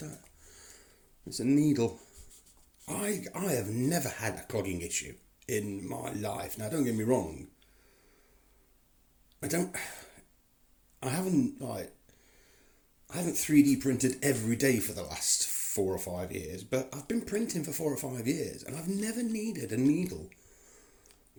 It's a needle. I have never had a clogging issue in my life. Now, don't get me wrong. I haven't 3D printed every day for the last 4 or 5 years, but I've been printing for 4 or 5 years, and I've never needed a needle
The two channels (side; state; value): both; identical; correlation 1.00